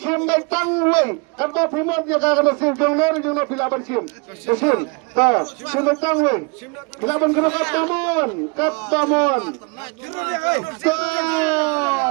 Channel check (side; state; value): left; quieter; 32.0 dB